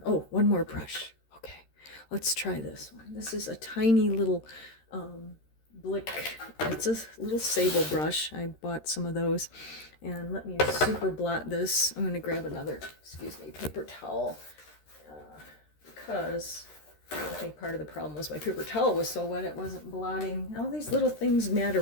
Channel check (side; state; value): right; late; 13 ms